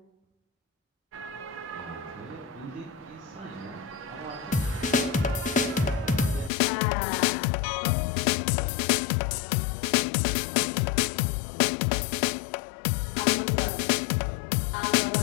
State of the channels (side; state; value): right; drops out; at 6.5 s